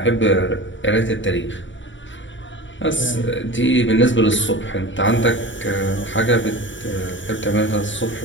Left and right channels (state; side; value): late; right; 0.55 ms